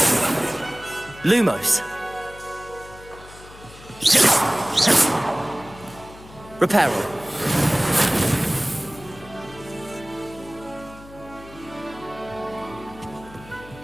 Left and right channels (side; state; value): left; noise; hum, 19 dB below the sound